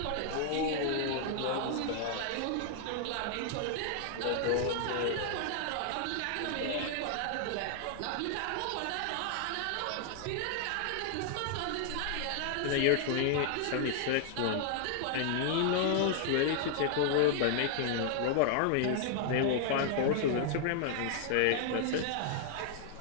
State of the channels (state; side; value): different; both; correlation 0.00